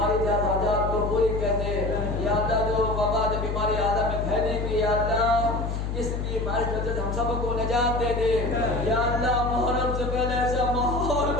جائز حاجات کو پوری کر دے، یا اللہ جو وبا جو بیماری عالم میں پھیلے گی یا اللہ اس بیماری سے ہم سب کو نجات دے دے، یا اللہ محرم سے پہلے ایسا ماحول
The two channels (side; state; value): left; noise; hum, 3 dB below the sound